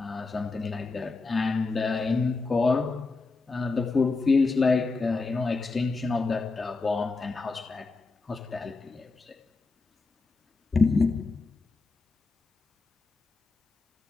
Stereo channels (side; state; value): right; quieter; 3.8 dB